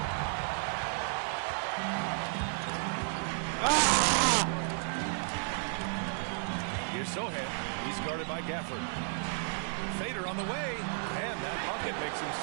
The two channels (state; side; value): silent; left; 56 dB below the other